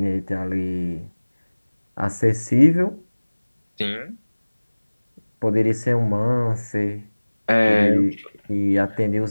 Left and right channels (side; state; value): both; inverted; correlation -1.00